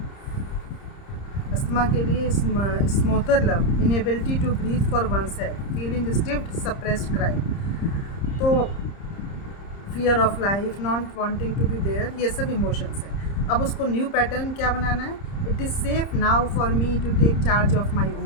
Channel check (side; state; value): right; late; 30 ms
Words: अस्थमा के लिए smother love, inability to breathe for oneself, feeling stifled, suppressed cry. तो fear of life, not wanting to be there, ये सब इमोशंस हैं। अब उसको न्यू पैटर्न क्या बनाना है? It is safe now for me to take charge of my